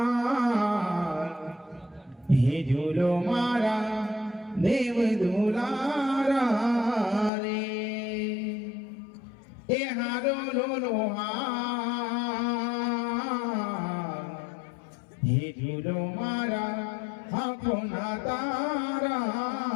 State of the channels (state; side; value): drops out; right; at 7.3 s